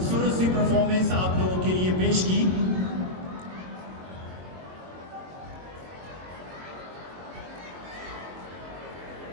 सी परफॉर्मेंस आप लोगों के लिए पेश की।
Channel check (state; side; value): late; left; 22 ms